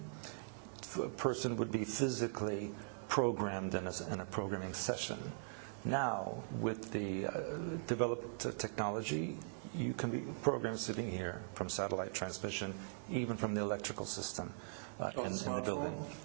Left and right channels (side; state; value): left; silent; digital silence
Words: a person would be physically programmed in a programming session. Now, with the developed technology, you can be programmed sitting here from satellite transmission, even from the electrical system. On a smartphone?